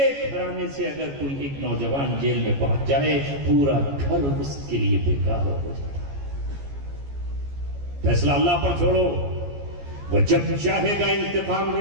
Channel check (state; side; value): late; left; 14 ms